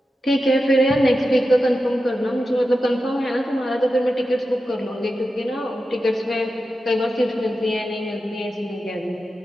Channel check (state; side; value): normal; both; correlation 0.91